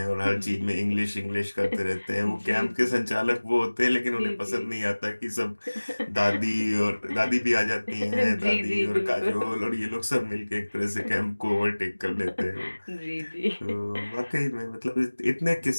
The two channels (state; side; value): inverted; both; correlation -1.00